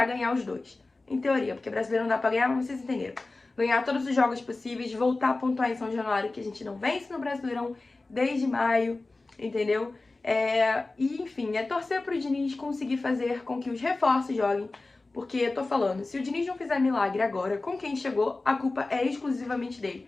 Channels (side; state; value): right; quieter; 3.3 dB